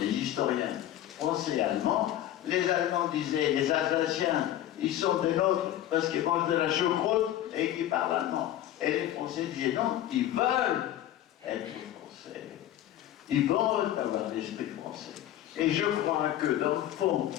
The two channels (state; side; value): quieter; right; 12.5 dB